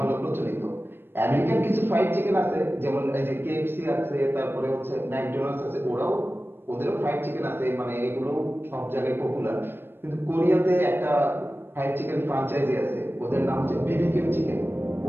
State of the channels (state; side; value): late; left; 0.10 ms